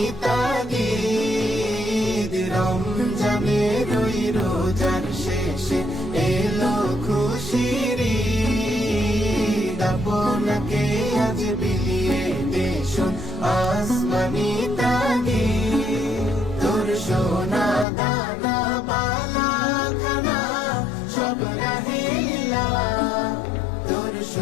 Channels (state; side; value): drops out; right; at 17.9 s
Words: তাগিদ। রমজানের ওই রোজার শেষে এলো খুশির ঈদ। আপনাকে আজ বিলিয়ে দেশন আসমানি তাগিদ। তোর সোনা দানা বালা খানা সব রাহিলা, তোর